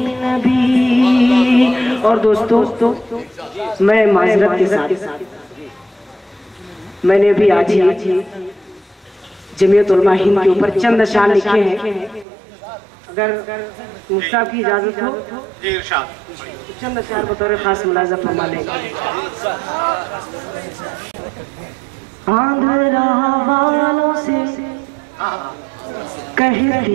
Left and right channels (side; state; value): left; drops out; at 12.2 s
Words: नबी। और दोस्तों मैं माजरत के साथ मैंने भी आज ही जमीयत उलमा हिंद के ऊपर चंद अशार लिखे हैं। अगर मुफ्ता की इजाजत हो तो चंद अशार बतौर खास मुलाजा फरमा लेंगे। आंध्रा वालों से